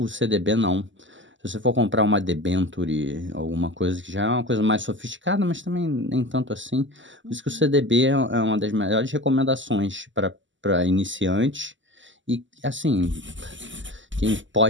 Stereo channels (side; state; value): left; late; 0.55 ms